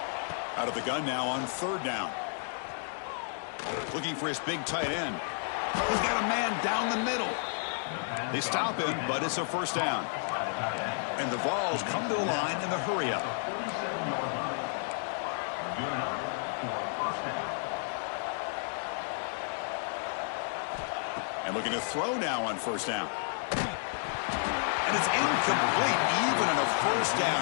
Out of the gun now on 3rd down. Looking for his big tight end. He's got a man down the middle. They stop him, but it's a 1st down. And the Vols come to the line in the hurry up. And looking to throw now on 1st down. And it's incomplete. Even on a 1st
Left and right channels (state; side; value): silent; right; digital silence